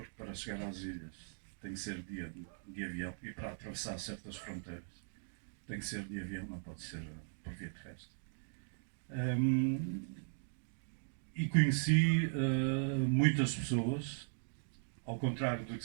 para chegar às ilhas tem que ser de avião, e para atravessar certas fronteiras tem que ser de avião, não pode ser por via terrestre. E conheci muitas pessoas, ao contrário do que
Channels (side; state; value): left; silent; digital silence